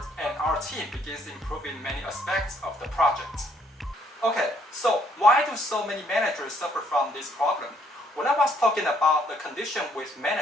and our team begins improving many aspects of the project. Okay, so why do so many managers suffer from this problem? When I was talking about the condition with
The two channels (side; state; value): both; normal; correlation 0.67